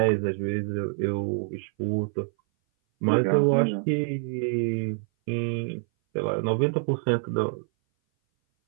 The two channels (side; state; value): left; silent; 58 dB below the other